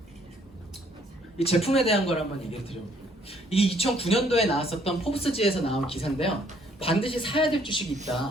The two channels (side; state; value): both; normal; correlation 0.64